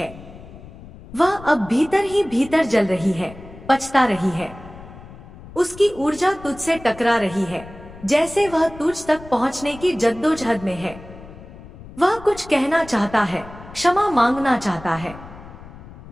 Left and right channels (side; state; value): left; noise; rumble, 17 dB below the sound